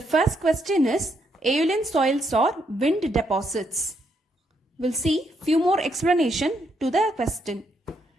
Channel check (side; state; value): both; normal; correlation 0.76